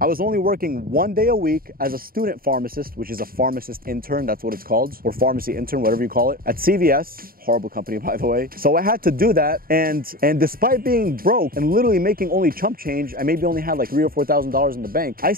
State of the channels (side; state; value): left; late; 0.42 ms